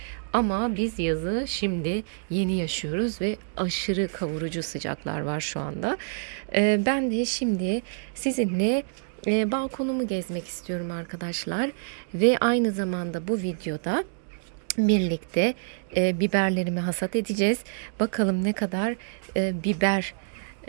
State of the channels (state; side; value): silent; left; digital silence